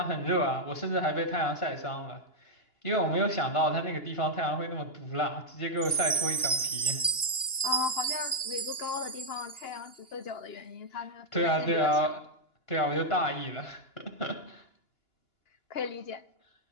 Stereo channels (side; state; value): right; late; 2.9 ms